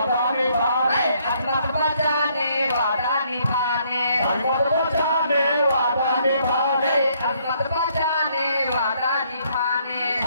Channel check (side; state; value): both; inverted; correlation -0.68